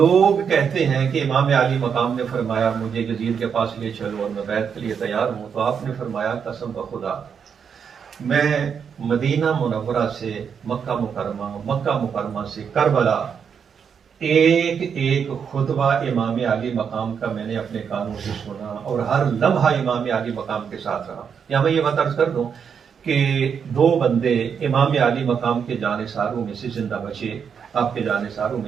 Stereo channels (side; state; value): left; quieter; 7.0 dB